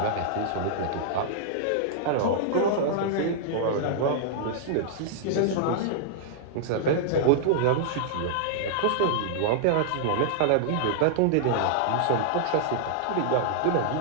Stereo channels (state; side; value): different; both; correlation -0.01